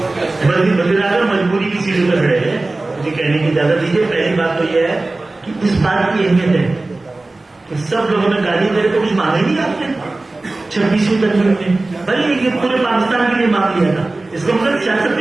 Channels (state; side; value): quieter; left; 3.1 dB